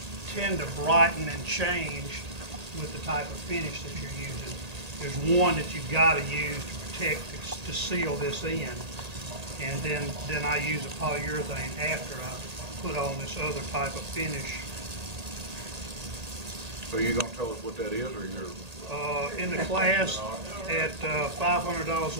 tend to brighten and change with the type of finish that you're using. There's one that you've got to use to protect, to seal this in. And then I use a polyurethane after I put on this other type of finish. So you gonna tell us what that is, or you're? In the class at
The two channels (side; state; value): left; late; 1.8 ms